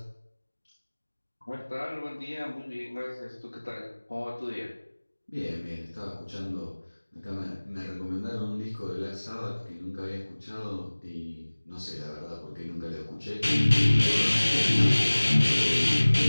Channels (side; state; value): both; inverted; correlation -1.00